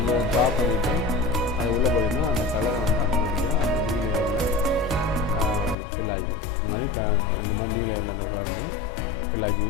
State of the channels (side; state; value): right; drops out; at 5.8 s